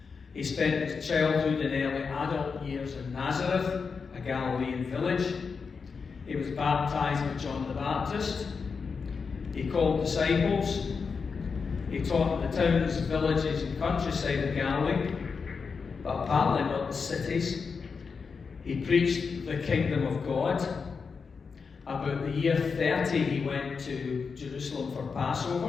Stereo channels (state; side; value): quieter; right; 5.3 dB